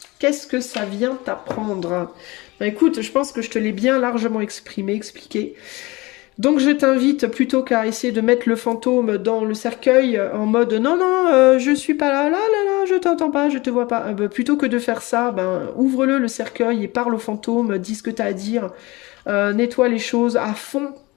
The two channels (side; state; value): right; quieter; 22.5 dB